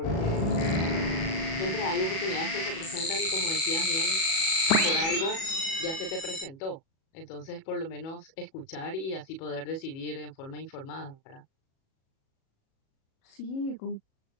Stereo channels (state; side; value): late; right; 37 ms